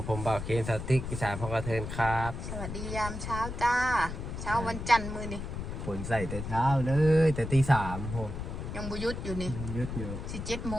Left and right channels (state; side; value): noise; left; rumble, 6 dB below the sound